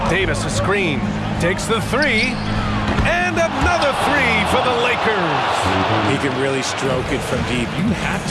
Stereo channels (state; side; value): identical; both; correlation 1.00